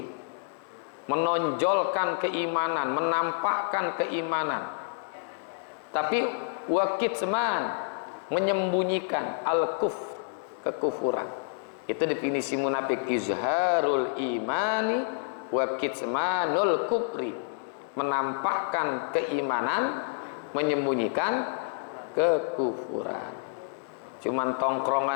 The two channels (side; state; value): right; silent; digital silence